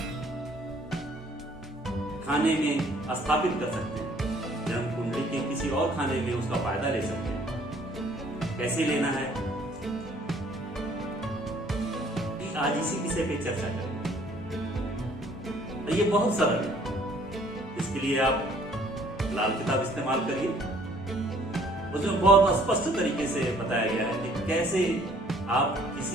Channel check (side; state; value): both; normal; correlation 0.59